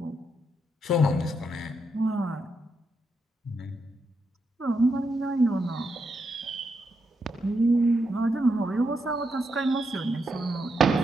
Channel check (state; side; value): normal; both; correlation 0.82